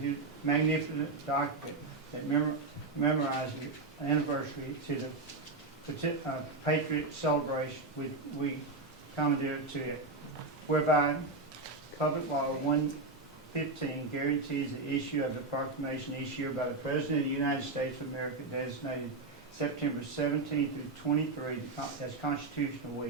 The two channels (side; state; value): left; quieter; 3.4 dB